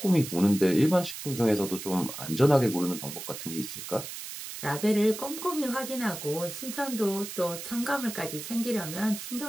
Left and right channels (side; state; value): right; noise; hiss, 9 dB below the sound